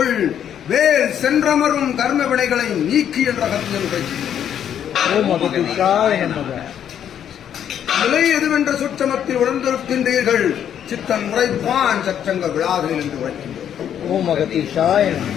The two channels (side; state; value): right; quieter; 9.5 dB